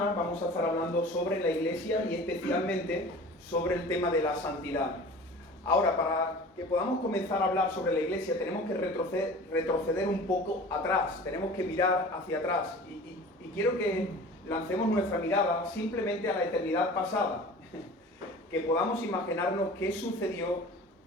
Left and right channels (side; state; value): both; normal; correlation 0.41